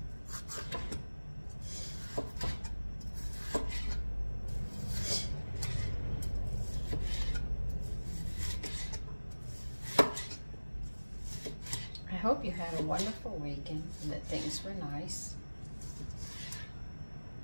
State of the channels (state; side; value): inverted; both; correlation -1.00